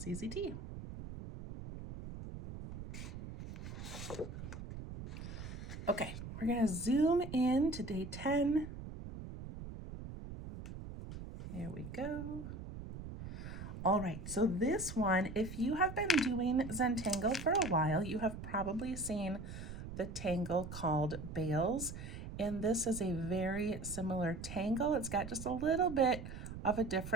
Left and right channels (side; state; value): right; noise; rumble, 10 dB below the sound